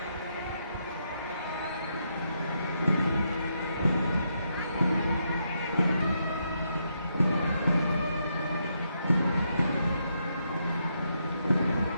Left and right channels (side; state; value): both; inverted; correlation -0.79